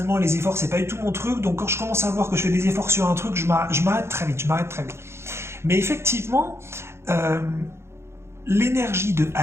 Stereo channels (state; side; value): late; left; 0.13 ms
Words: les efforts c'est pas du tout mon truc. Donc quand je commence à voir que je fais des efforts sur un truc, je m'arrête très vite. Mais effectivement. L'énergie de